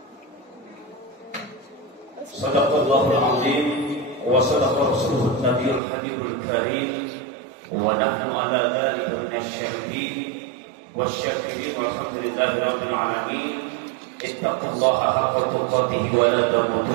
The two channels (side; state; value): left; drops out; at 5.8 s